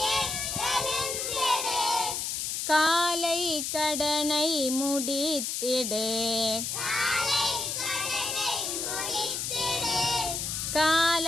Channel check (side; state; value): left; noise; hiss, 2 dB below the sound